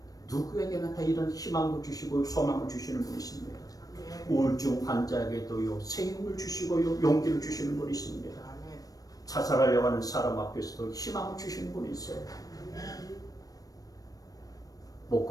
누구에게나 다 이런 희망을 주시고 소망을 주시는 분이십니다. 우울증 환자에게도요 새 힘을 주시고요 용기를 주시는 분이십니다. 자살하려고 하는 사람 앞에서도 희망을 주시는 분이세요. 못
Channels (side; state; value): right; late; 0.18 ms